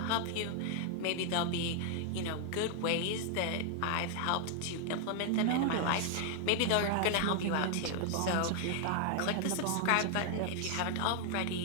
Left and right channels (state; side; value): different; both; correlation 0.00